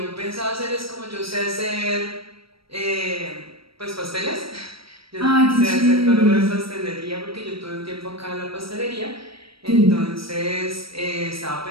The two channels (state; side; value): late; left; 0.75 ms